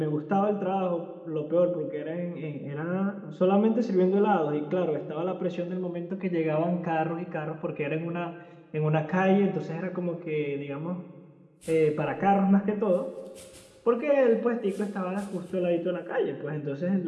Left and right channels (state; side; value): identical; both; correlation 1.00